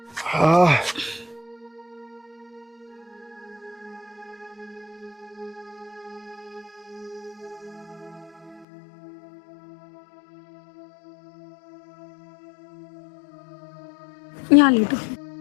हाँ। यहाँ लेटो।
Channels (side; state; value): right; drops out; at 8.7 s